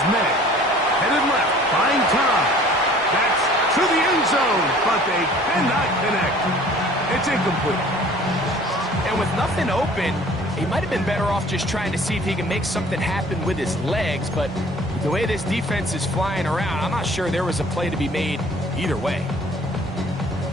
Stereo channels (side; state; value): both; normal; correlation 0.51